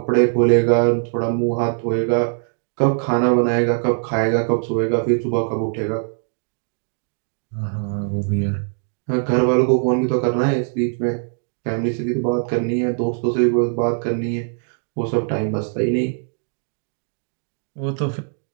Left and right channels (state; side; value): silent; left; digital silence